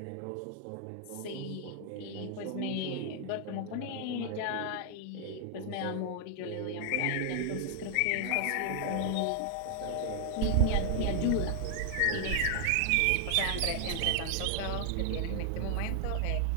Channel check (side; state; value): both; different; correlation 0.00